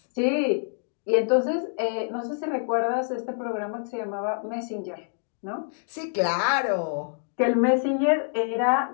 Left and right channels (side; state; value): right; silent; digital silence